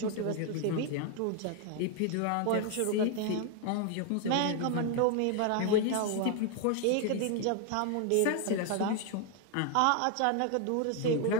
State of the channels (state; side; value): different; both; correlation 0.00